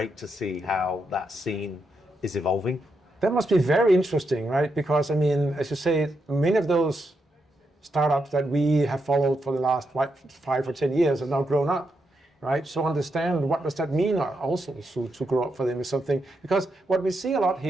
to see how that scene is evolving. That must be very interesting, right? Because, I mean, as you say, many of those startups that we have followed for the last 5 or 10 years have now grown up, right? So understand what does that mean also to grow up for them is something, because what we see a lot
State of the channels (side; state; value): both; normal; correlation 0.82